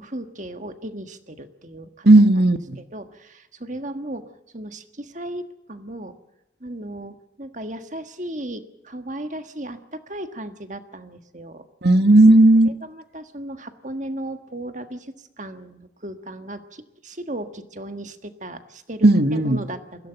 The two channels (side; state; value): both; normal; correlation 0.76